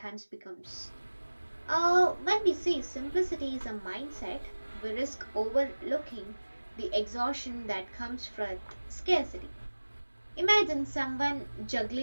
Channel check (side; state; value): both; inverted; correlation -1.00